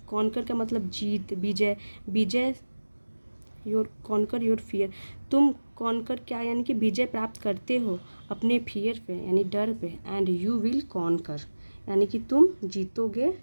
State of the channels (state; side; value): inverted; both; correlation -1.00